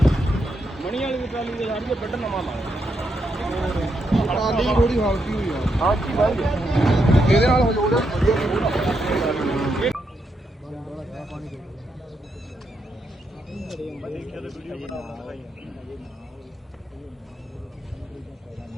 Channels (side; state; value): both; normal; correlation 0.81